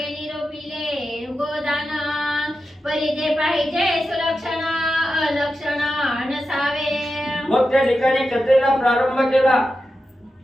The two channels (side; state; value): both; normal; correlation 0.90